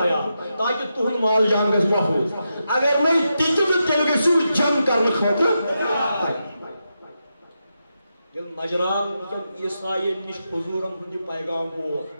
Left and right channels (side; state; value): both; inverted; correlation -0.87